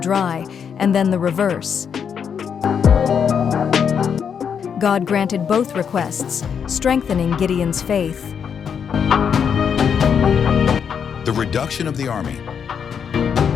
dry, and then the reverse. God granted both requests, strengthening Gideon's faith. The reduction of the army.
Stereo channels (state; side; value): quieter; right; 7.3 dB